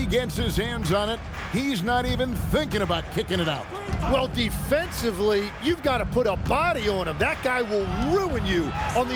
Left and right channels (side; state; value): both; identical; correlation 1.00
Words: gets his hands on it, he's not even thinking about kicking it out. Well, defensively, you've got to put a body on him. That guy will ruin you on